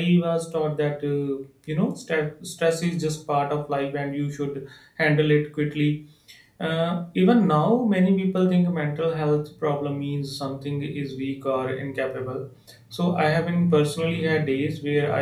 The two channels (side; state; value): both; identical; correlation 1.00